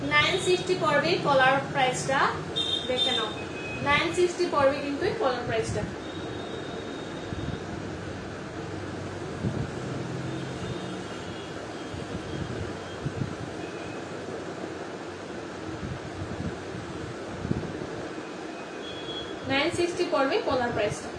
$960 পড়বে কলার প্রাইসটা, দেখে নাও। $960 পড়বে কিন্তু এই কলার প্রাইসটা। $960 পড়বে কলার প্রাইসটা।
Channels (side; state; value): both; identical; correlation 1.00